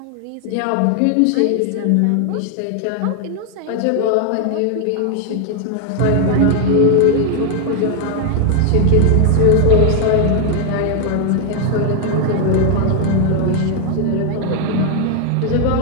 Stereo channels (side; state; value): both; different; correlation 0.00